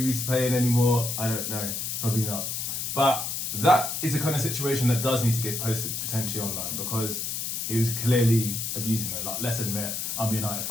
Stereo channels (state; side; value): noise; left; hiss, 3 dB below the sound